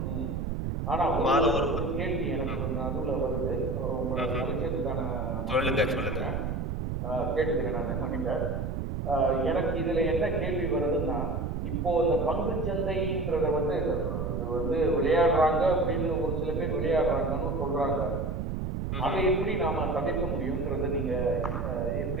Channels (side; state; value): right; noise; rumble, 2 dB below the sound